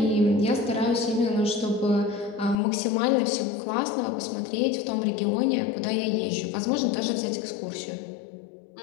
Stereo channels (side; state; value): right; drops out; at 2.6 s